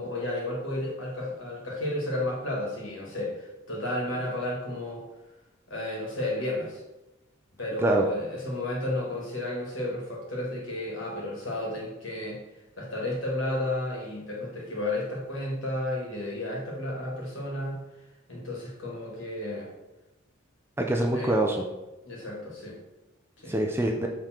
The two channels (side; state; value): both; normal; correlation 0.41